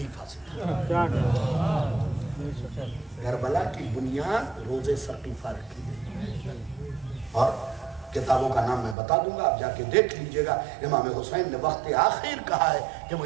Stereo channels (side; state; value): left; drops out; at 9.0 s